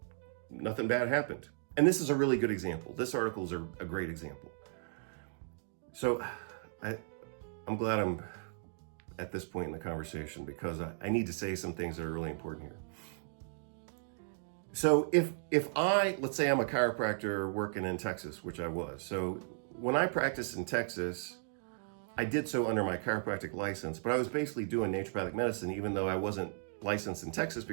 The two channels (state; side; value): silent; left; digital silence